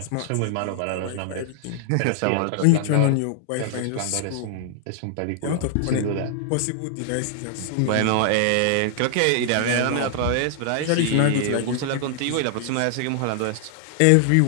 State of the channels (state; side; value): different; both; correlation 0.00